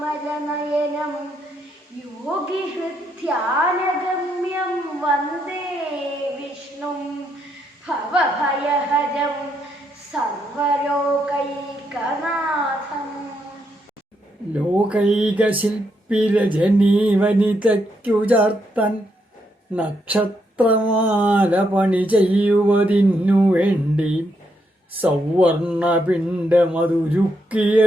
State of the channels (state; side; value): normal; both; correlation 0.78